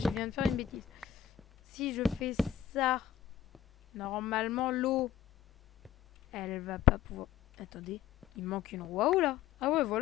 viens de faire une bêtise. Si je fais ça... Normalement, l'eau... Elle va pas pouvoir... Attendez, il manque une roue à eau là. Ah ouais,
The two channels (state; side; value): quieter; right; 10.6 dB